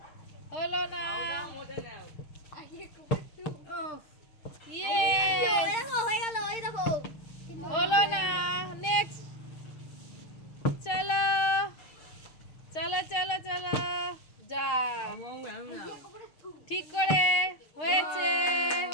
হলো না। হলো না। নেক্সট। চলো চলো চলো চলো যা ঠিক করে হয়েছে।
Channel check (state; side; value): late; right; 6.4 ms